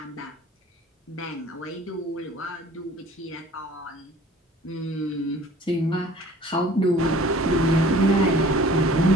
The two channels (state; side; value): normal; both; correlation 0.49